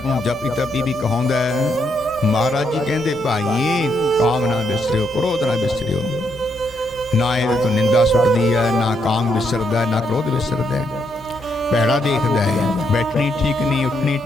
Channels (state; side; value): normal; both; correlation 0.77